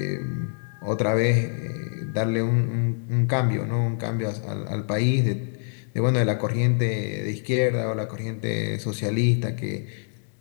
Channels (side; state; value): right; silent; digital silence